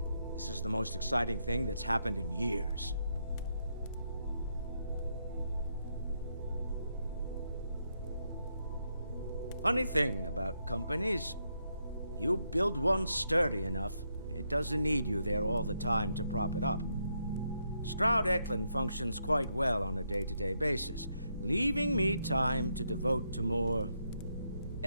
this is the most exciting thing that's happened in years. Funny thing about companies, you build one sturdy enough, it doesn't need you there all the time to prop it up. Stroud Eklund functions quite well on a day-to-day basis, leaving me time to devote to more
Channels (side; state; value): both; inverted; correlation -0.79